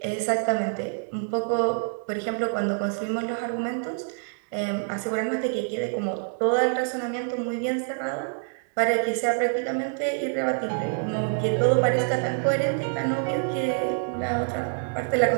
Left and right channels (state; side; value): silent; left; 61 dB below the other